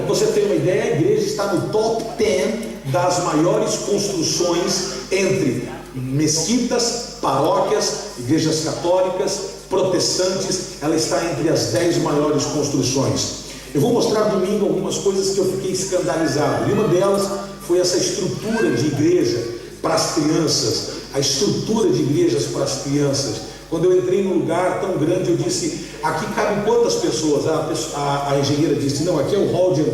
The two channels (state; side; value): identical; both; correlation 1.00